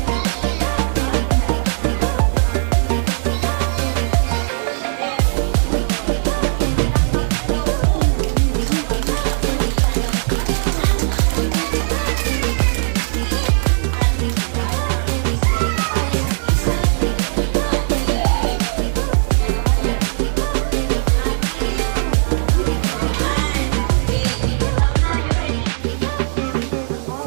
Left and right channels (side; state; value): left; silent; 67 dB below the other